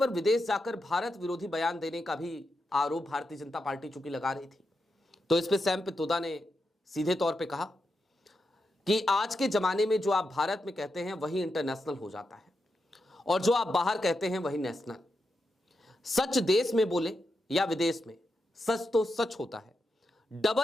विदेश जाकर भारत विरोधी बयान देने का भी आरोप भारतीय जनता पार्टी चूंकि लगा रही थी, तो इस पे सैम पित्रोदा ने सीधे तौर पे कहा कि आज के जमाने में जो आप भारत में कहते हैं वही इंटरनेशनल हो जाता है, और जो आप बाहर कहते हैं वही नेशनल। सच देश में बोले या विदेश में, सच तो सच होता है।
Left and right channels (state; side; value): normal; both; correlation 0.87